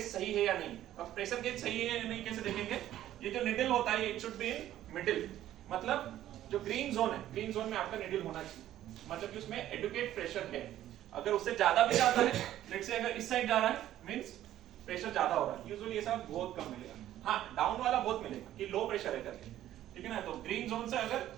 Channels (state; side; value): quieter; left; 12.8 dB